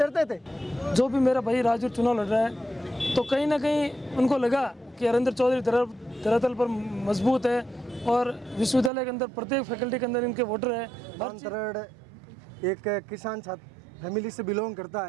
थे। जो भी मेरा भाई राजू चुनाव लड़ रहा है तो कहीं ना कहीं उनको लगा कि हरेंद्र चौधरी धरातल पर मजबूत है और विश्वविद्यालय के अंदर प्रत्येक फैकल्टी के अंदर इनके वोटर है। अंतरण एक किसान छात्र फैमिली से बिलोंग करता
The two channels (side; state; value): left; drops out; at 8.9 s